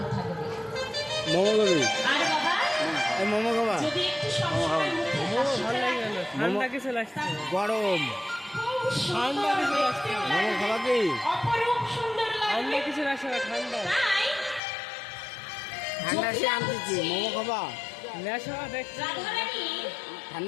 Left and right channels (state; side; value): drops out; right; at 14.6 s